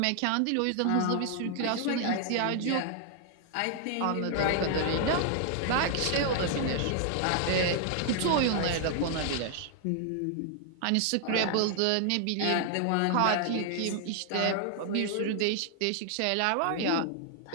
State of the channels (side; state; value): both; different; correlation 0.00